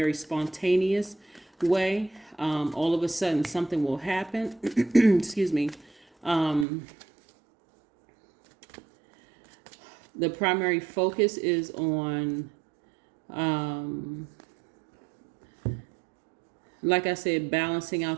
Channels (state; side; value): drops out; left; at 6.7 s